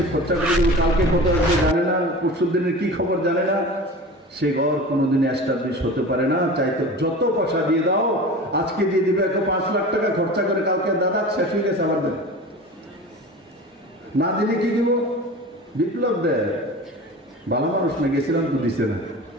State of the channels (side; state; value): both; normal; correlation 0.35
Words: 257. খরচা করে দেবে, কালকে কত আসবে জানে না, পরশুর দিনের কি খবর জানে না, সে ঘর কোনোদিন এস্টাবলিশ হতে পারে না। চাইতো যত পয়সা দিয়ে দাও, আজকে দিয়ে দিবে 5 লাখ টাকা খরচা করে, কালকে দাদা শেষ হয়ে গেছে আবার দেন, না দিলে কি দিব? বিপ্লব দেয়, ভালো মানুষ না, গেছিলাম তো দিছে না,